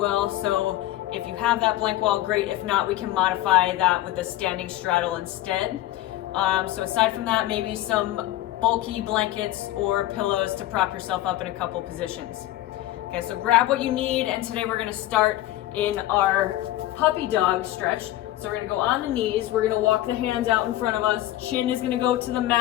So if you have that blank wall, great. If not, we can modify that with a standing straddle instead. So aside from that, maybe some bulky blankets or pillows to prop yourself up in a couple positions. Okay, so grab what you need, and today we're gonna start in our puppy dog stretch. So we're gonna go on the knees, we're gonna walk the hands out in front of us, chin is gonna go to the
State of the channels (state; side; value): quieter; right; 15.3 dB